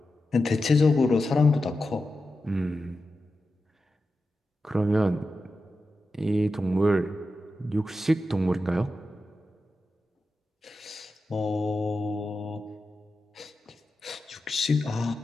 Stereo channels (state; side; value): normal; both; correlation 0.91